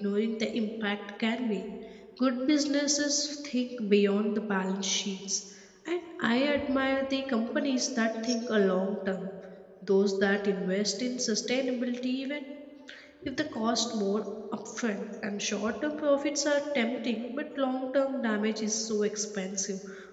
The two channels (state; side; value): identical; both; correlation 1.00